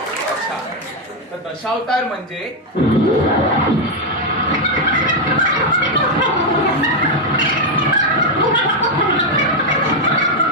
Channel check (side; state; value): both; normal; correlation 0.03